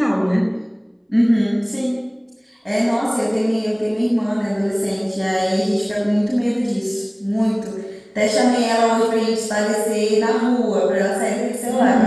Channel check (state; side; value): identical; both; correlation 1.00